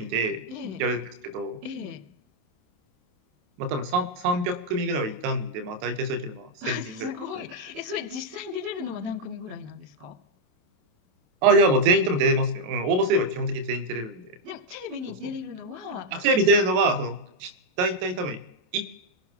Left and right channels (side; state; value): left; late; 27 ms